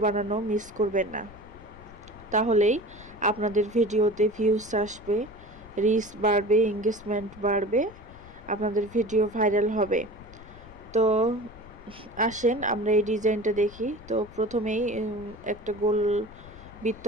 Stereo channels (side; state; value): left; noise; rumble, 20 dB below the sound